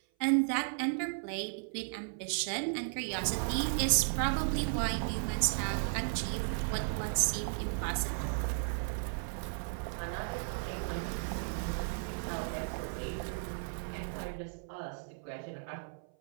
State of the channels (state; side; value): silent; left; 54 dB below the other